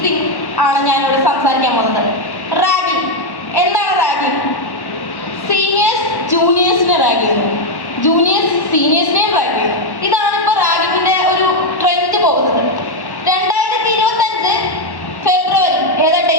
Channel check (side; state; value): right; late; 1.1 ms